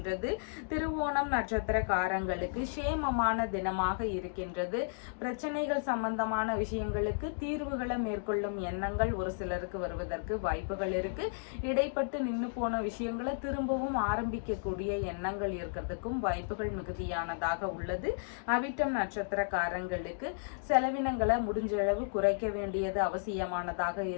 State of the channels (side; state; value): right; silent; digital silence